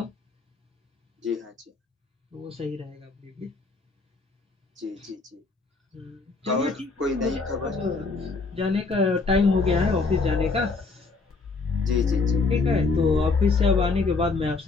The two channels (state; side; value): quieter; right; 4.1 dB